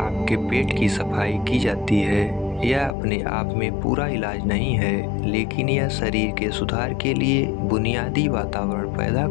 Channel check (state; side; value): drops out; right; at 3.0 s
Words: पेट की सफाई की जाती है। यह अपने आप में पूरा इलाज नहीं है, लेकिन यह शरीर के सुधार के लिए बुनियादी वातावरण पैदा